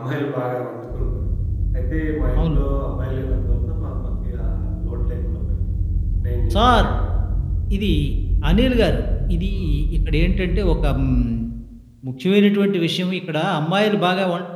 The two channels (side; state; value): both; identical; correlation 1.00